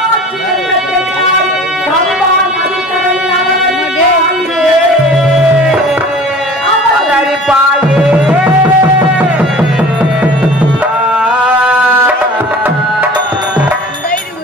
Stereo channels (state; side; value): normal; both; correlation 0.43